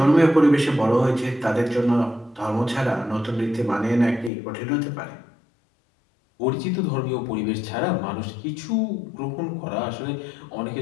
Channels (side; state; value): right; drops out; at 4.3 s